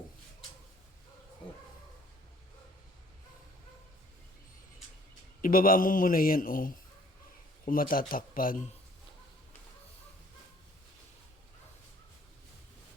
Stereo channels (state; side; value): normal; both; correlation 0.57